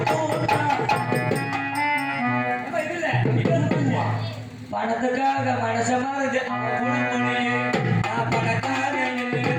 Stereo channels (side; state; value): both; identical; correlation 1.00